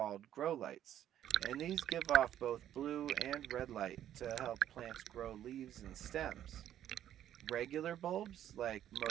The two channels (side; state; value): left; quieter; 11.2 dB